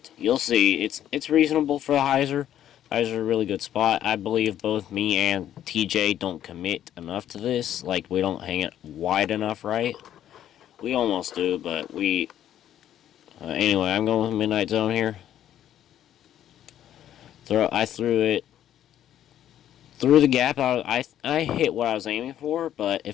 You'll see, it's reasonable for the hyzer. Hyzer's a really good spot. I believe both me and TJ don't commit enough to this. We don't hang it wide enough, right? We almost do, but we... anyway, I'm going with Midnight Zone here. I threw it through the gap. I hit what I was aiming for, but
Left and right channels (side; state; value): right; quieter; 11.2 dB